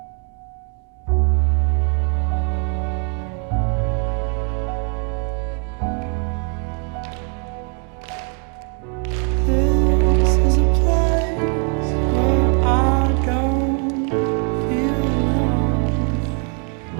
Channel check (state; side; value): quieter; left; 39.7 dB